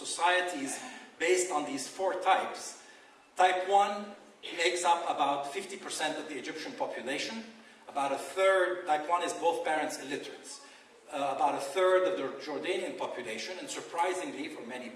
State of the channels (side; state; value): both; identical; correlation 1.00